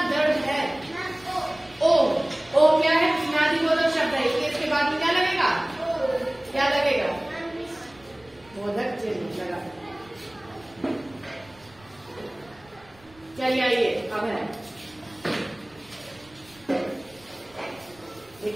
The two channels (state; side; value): noise; right; rumble, 27 dB below the sound